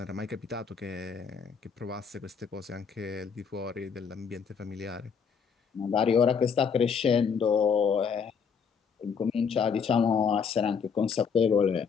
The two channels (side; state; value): right; quieter; 6.3 dB